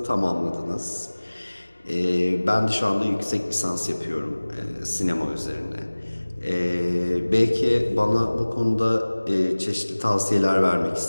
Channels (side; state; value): both; inverted; correlation -1.00